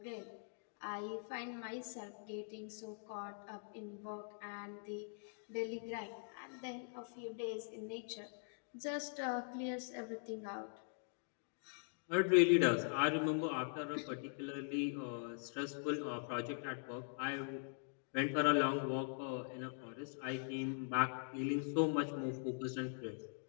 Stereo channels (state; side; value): silent; right; digital silence